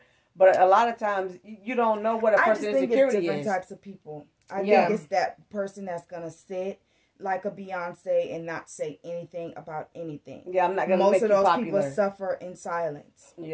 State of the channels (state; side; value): identical; both; correlation 1.00